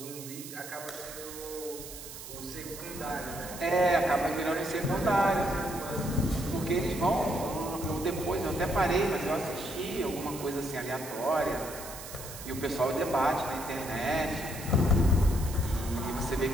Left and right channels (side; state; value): right; noise; hiss, 12 dB below the sound